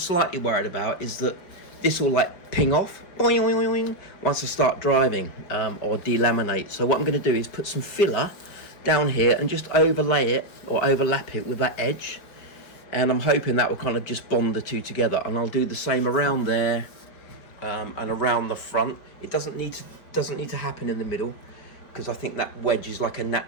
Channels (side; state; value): right; late; 5.1 ms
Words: worried about is that this will like ping off boing, boing, boing, once I start driving, or delaminate. So what I'm going to do is put some filler down here and just overlay it or overlap it with that edge, and I'm hoping that will kind of just bond the two together. And I'll do the same around there and around the front. It doesn't need to happen in the middle, because I think that wedge is like a